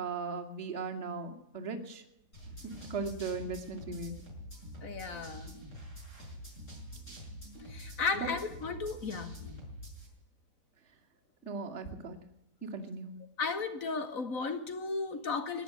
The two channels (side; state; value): right; late; 4.0 ms